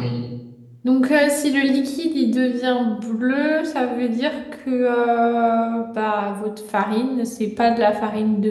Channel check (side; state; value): both; identical; correlation 1.00